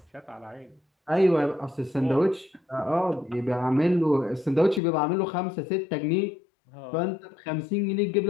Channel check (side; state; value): right; drops out; at 4.8 s